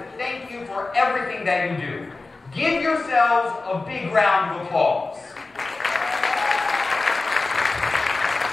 thank you for everything that you do. Give yourselves a big round of applause.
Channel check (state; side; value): quieter; right; 3.5 dB